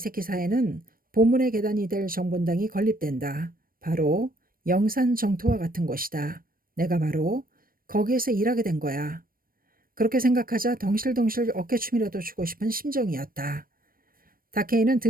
본문의 계단이 될 정본당이 건립된다. 바로 영산 정토와 같은 곳이다. 내가 바로 거기에서 일하게 된 거야. 그렇게 생각하자 덩실덩실 어깨춤이라도 추고 싶은 심정이었다. 다케이는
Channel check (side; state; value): left; late; 0.41 ms